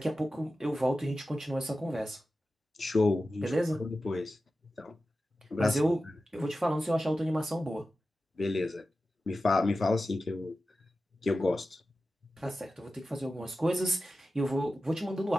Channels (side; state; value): both; normal; correlation 0.93